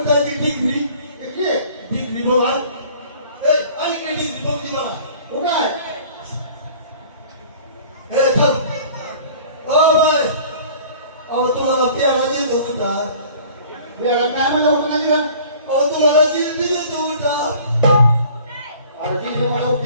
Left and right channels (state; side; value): inverted; both; correlation -0.49